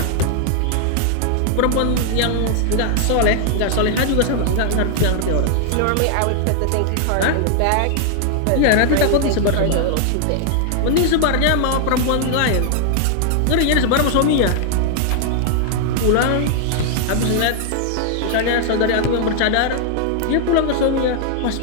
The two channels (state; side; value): different; both; correlation 0.00